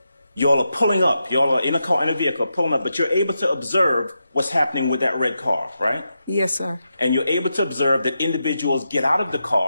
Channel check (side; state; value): both; inverted; correlation -0.87